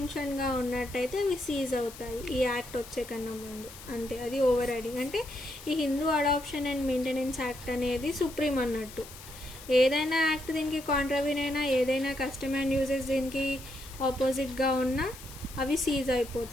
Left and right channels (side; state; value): left; noise; hiss, 16 dB below the sound